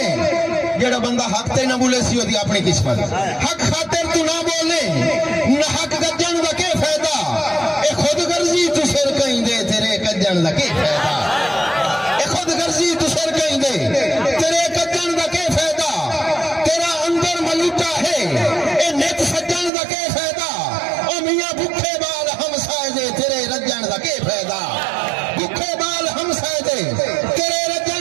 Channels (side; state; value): left; drops out; at 19.7 s